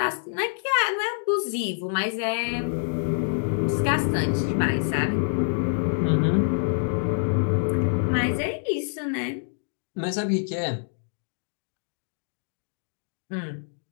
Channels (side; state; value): right; silent; digital silence